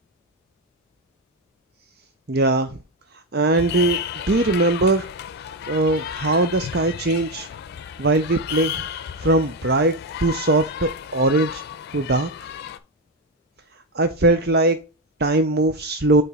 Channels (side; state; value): both; normal; correlation 0.10